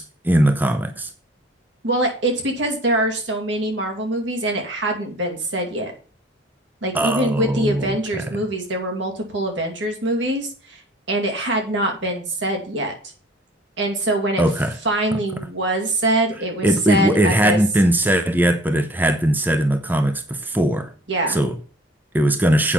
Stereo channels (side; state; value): both; normal; correlation 0.51